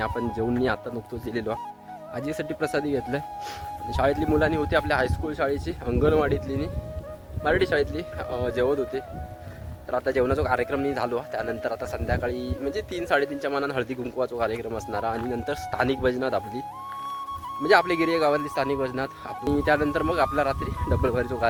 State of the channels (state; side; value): identical; both; correlation 1.00